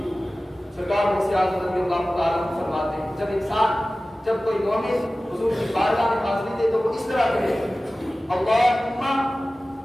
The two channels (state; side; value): normal; both; correlation 0.97